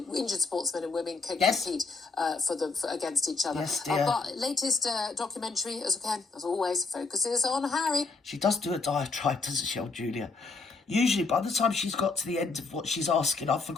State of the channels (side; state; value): right; quieter; 4.1 dB